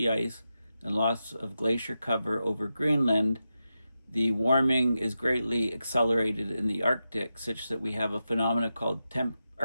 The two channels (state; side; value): inverted; both; correlation -0.89